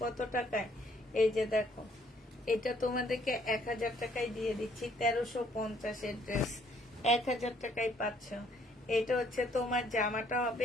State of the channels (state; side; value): normal; both; correlation 0.65